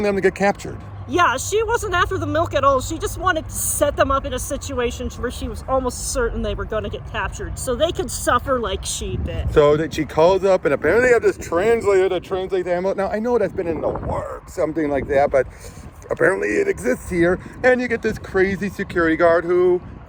them to get captured. Yeah, she wasn't after the milk at all. She just wanted to set them up in a situation where she was almost certain they were going to get captured, so they could suffer like she did. So that she calls up, and apparently they have this translator to translate the ammo. Now, I know that's been in the works, something like that, but apparently it exists here, and you get this crazy security guard who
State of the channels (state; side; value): identical; both; correlation 1.00